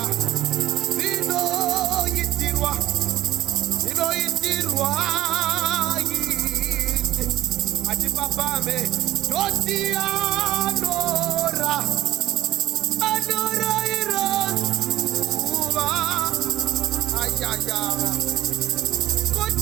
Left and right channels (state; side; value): quieter; left; 14.6 dB